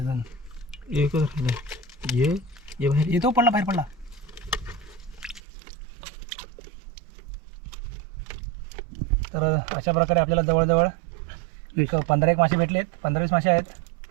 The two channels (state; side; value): drops out; left; at 5.4 s